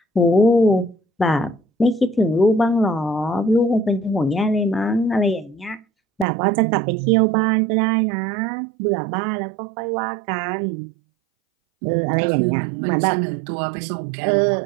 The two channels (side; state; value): left; drops out; at 6.2 s